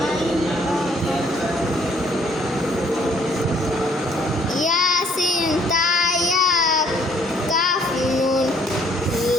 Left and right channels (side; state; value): both; normal; correlation 0.62